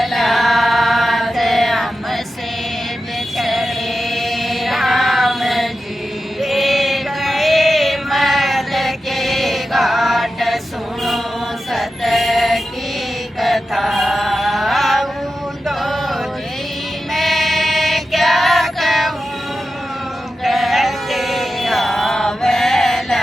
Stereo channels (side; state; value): both; normal; correlation 0.92